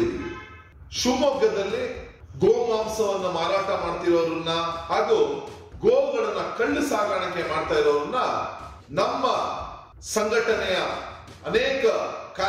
ಶಿವಮೊಗ್ಗದಲ್ಲಿ ಗೋಮಾಂಸವನ್ನ ಮಾರಾಟ ಮಾಡ್ತಿರೋರನ್ನ ಹಾಗೂ ಗೋಗಳನ್ನ ಕಳ್ಳು ಸಾಗಾಣಿಕೆ ಮಾಡ್ತಾ ಇರೋರನ್ನ ನಮ್ಮ ಸಂಘಟನೆಯ ಅನೇಕ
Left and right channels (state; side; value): identical; both; correlation 1.00